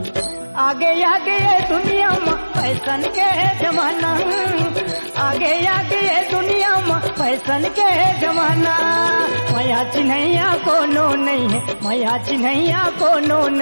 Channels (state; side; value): inverted; both; correlation -1.00